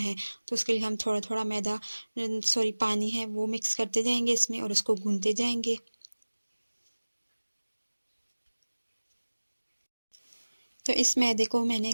तो उसके लिए हम थोड़ा थोड़ा पानी है वो मिक्स करते जाएंगे इसमें और उसको गूंदते जाएंगे। तो इस मैदे को मैंने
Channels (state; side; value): inverted; both; correlation -1.00